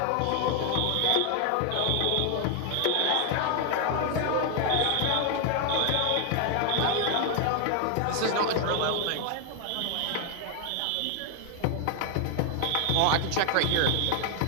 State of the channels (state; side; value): different; both; correlation 0.00